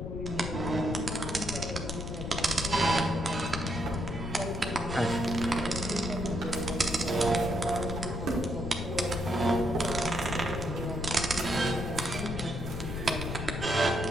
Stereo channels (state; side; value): noise; left; rumble, 5 dB below the sound